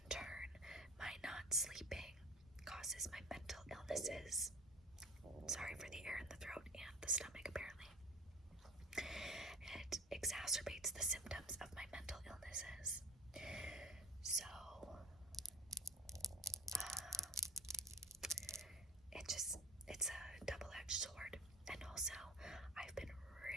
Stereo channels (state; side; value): normal; both; correlation 0.45